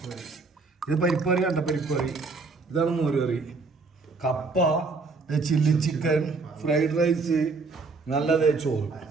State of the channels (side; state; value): left; quieter; 4.1 dB